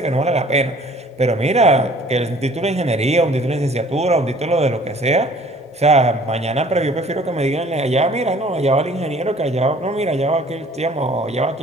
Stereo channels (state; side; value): normal; both; correlation 0.53